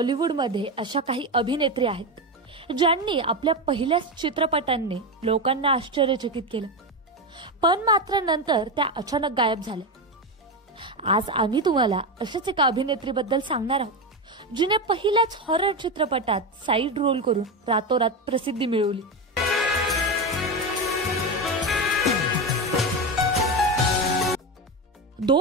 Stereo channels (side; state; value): both; normal; correlation 0.15